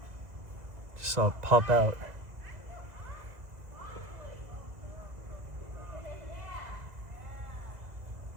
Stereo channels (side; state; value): left; late; 2.0 ms